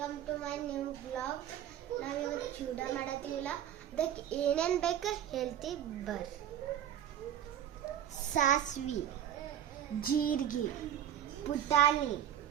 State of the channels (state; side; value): quieter; left; 10.5 dB